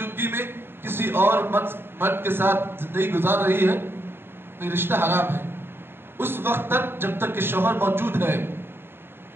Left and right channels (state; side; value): late; left; 0.11 ms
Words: میں کسی اور مرد کے ساتھ زندگی گزار رہی ہے تو یہ رشتہ حرام ہے اس وقت تک جب تک کہ شوہر موجود ہے.